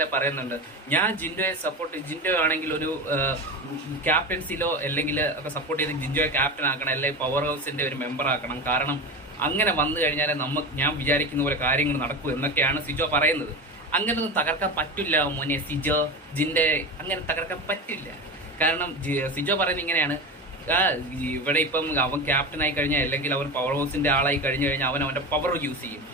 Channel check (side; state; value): both; normal; correlation 0.25